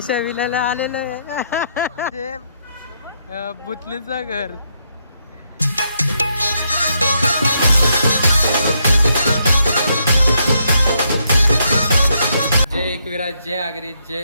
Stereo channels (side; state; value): both; inverted; correlation -0.77